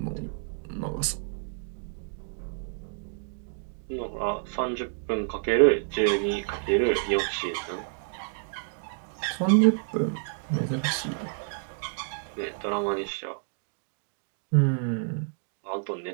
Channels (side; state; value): left; silent; 58 dB below the other